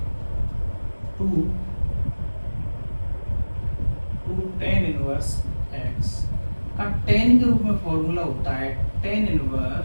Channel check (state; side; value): inverted; both; correlation -1.00